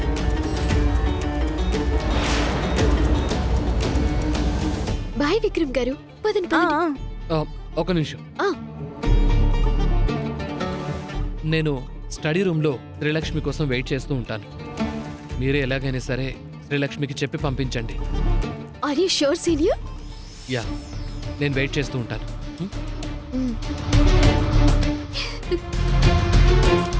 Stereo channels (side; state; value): both; identical; correlation 1.00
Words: బాయ్ విక్రమ్ గారు, పదండి పదండి. ఒక నిమిషం, ఆ, నేను స్టడీ రూమ్లో శ్రీలక్ష్మి కోసం వెయిట్ చేస్తూ ఉంటాను. మీరే ఎలాగైనా సరే శ్రీలక్ష్మికి చెప్పి పంపించండి. Are you sure senior? Yeah, నేను వెయిట్ చేస్తూ ఉంటాను.